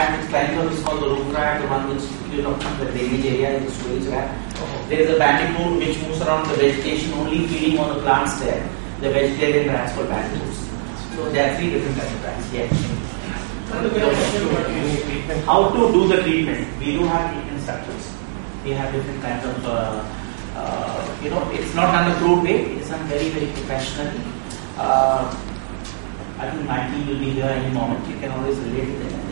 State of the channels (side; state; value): left; silent; 65 dB below the other